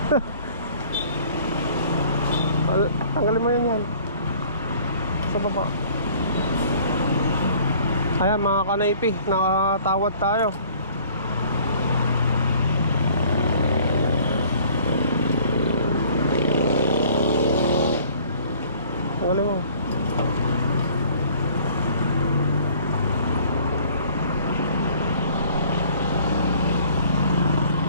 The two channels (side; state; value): both; inverted; correlation -0.53